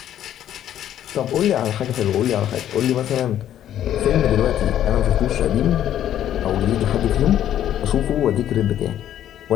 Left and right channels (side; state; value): right; quieter; 11.2 dB